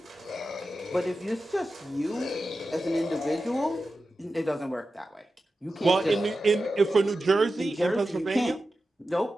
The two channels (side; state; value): both; normal; correlation 0.92